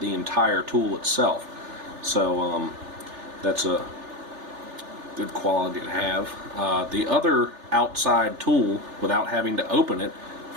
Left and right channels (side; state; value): left; late; 3.4 ms